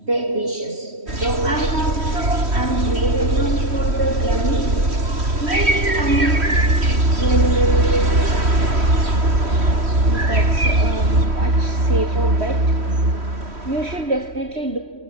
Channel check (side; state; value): left; late; 3.1 ms